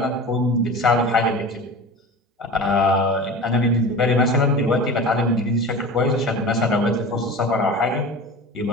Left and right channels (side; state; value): both; normal; correlation 0.34